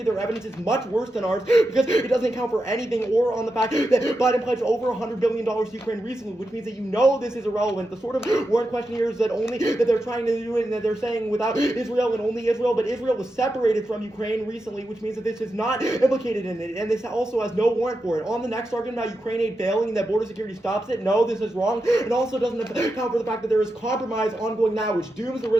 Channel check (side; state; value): both; normal; correlation 0.88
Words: Their evidence is much worse than ours because it doesn't account for anything or on the fact that Biden pledged over $100 billion to Ukraine recently, which means that you know this is irrelevant. The sort of warrant question here is that they're trying to do it and that they're saying without Israel and only Israel, but Israel was separated from Ukraine recently, which means that this is not implicated in it, and this also has no warrant for it. On the next argument about Ukraine aid failing and that border security stops it, no, this is wrong. It also doesn't account for the fact that there is compromise ongoing now, which dooms the